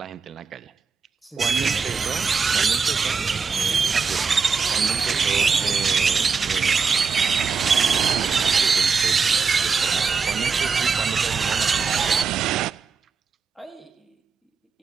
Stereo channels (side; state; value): left; quieter; 5.3 dB